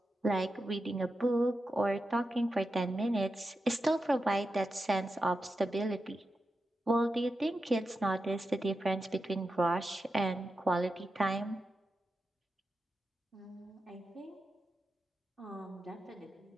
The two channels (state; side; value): normal; both; correlation 0.90